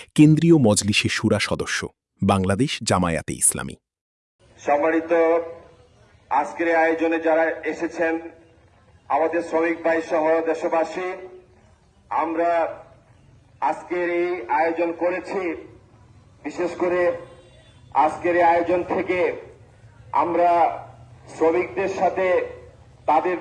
কেন্দ্রীয় মজলিসে শুরা সদস্য, বাংলাদেশ জামায়াতে ইসলামী। সম্মানিত আজকের আয়োজনে যারা এসেছেন, আমাদের শ্রমিক ভাই সহ দেশবাসী, আমরা আজকের এই আয়োজন করেছি। বিশেষ করে আজকের এই আয়োজন থেকে আমরা শ্রমিকদের সাথে তাদের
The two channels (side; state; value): both; identical; correlation 1.00